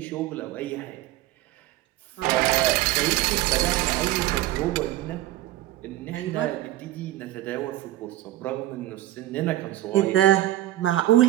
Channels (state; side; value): quieter; left; 15.2 dB